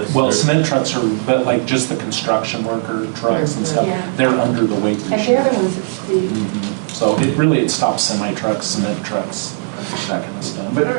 Well, cement trucks are, but like just the construction worker trucks and stuff, Yeah. they're under the weight And they're restriction. the ones that speed. So it stops semi-trucks, cement trucks, that kind of stuff.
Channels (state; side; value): silent; left; digital silence